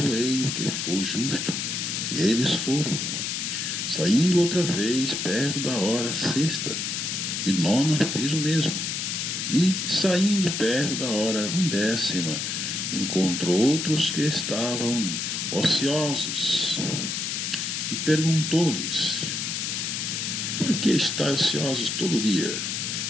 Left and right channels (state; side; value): noise; left; hiss, 2 dB below the sound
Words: o que for justo. E eles foram. Saindo outra vez, perto da hora sexta, e nona fez o mesmo. E, saindo perto da hora undécima, encontrou outros que estavam ociosos, e perguntou-lhes: Por que estáis ociosos todo dia?